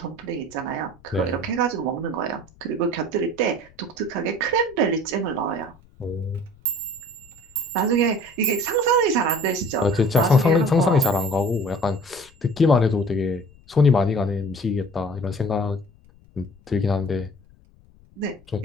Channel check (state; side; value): noise; left; rumble, 27 dB below the sound